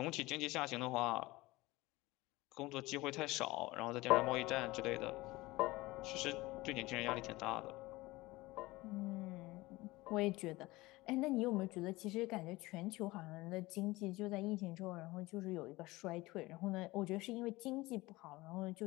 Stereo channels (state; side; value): quieter; right; 20.3 dB